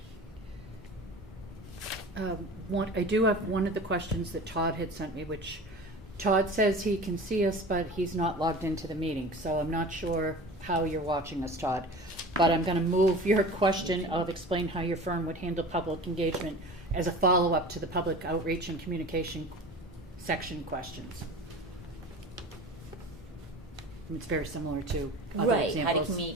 I do have one of the questions that Todd had sent me, which Todd says he can see us, but he's not logged into the meeting, so I'm not sure how you're watching us, Todd. But I'm going to move your question of explain how your firm would handle public engagement as a follow-up to the public outreach and communication section questions. It's very similar to other right, how to examples.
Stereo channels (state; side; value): normal; both; correlation 0.37